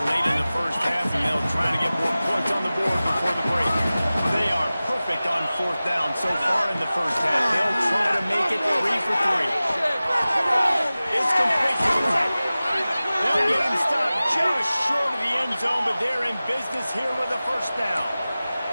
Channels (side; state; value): both; inverted; correlation -0.97